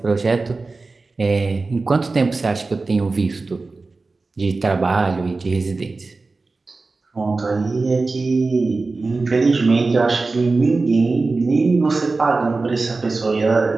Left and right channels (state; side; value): quieter; left; 3.7 dB